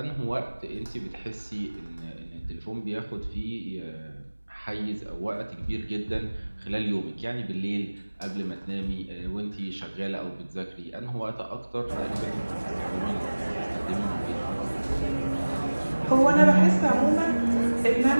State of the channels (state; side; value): inverted; both; correlation -1.00